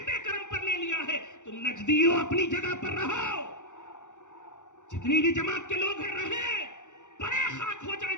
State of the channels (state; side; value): late; right; 0.85 ms